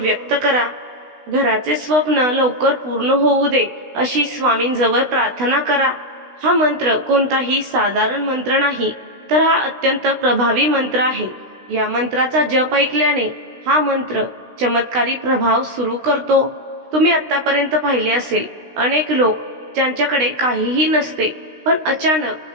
करा. घराचे स्वप्न लवकर पूर्ण होऊ दे अशी स्वामींजवळ प्रार्थना करा. हा मंत्र कोणताही साधारण मंत्र नाही, तर हा अत्यंत प्रभावी मंत्र आहे. या मंत्राचा जप ऐकल्याने हा मंत्र चमत्कारी प्रभाव सुरू करतो. तुम्ही आतापर्यंत पाहिले असेल, अनेक लोक ज्यांच्याकडे काहीही नसते पण अचानक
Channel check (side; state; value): left; late; 16 ms